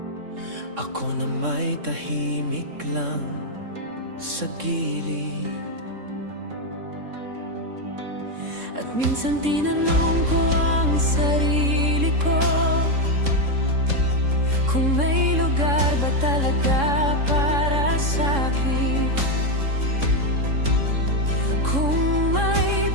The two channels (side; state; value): left; late; 3.6 ms